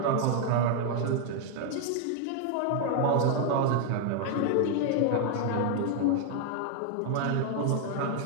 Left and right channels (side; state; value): both; different; correlation 0.00